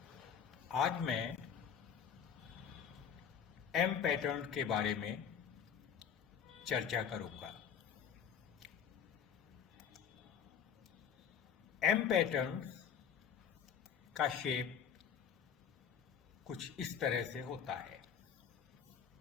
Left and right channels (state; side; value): quieter; right; 7.7 dB